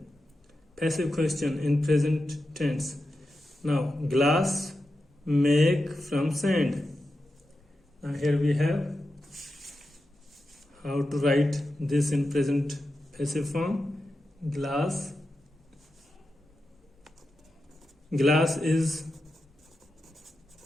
Passive question in present tense. Now, glass make from sand. Now here we have how to write this in present passive form. Glass is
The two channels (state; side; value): normal; both; correlation 0.90